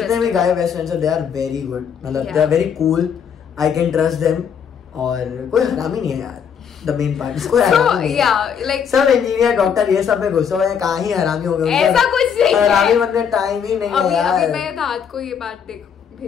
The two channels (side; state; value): right; quieter; 7.5 dB